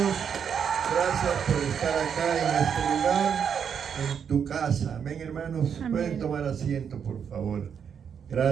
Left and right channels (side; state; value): left; quieter; 7.5 dB